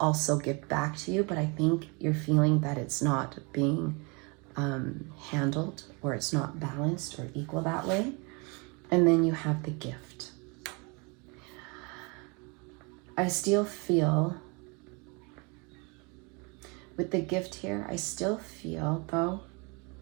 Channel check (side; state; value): left; quieter; 30.5 dB